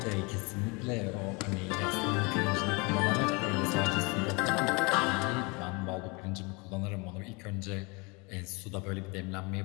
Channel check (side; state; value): right; quieter; 28.9 dB